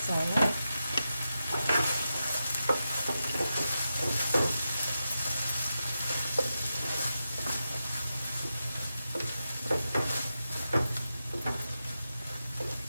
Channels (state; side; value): inverted; both; correlation -0.89